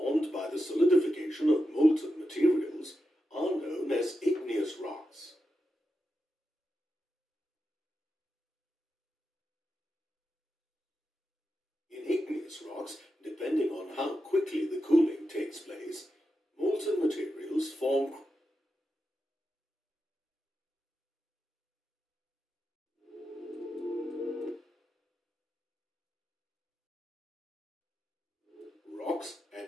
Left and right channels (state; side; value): normal; both; correlation 0.88